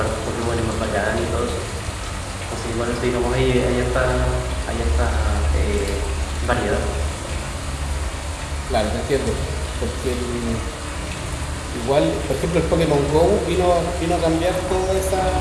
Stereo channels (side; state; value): both; identical; correlation 1.00